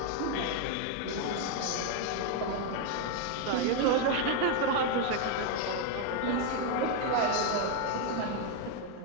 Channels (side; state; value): both; different; correlation 0.01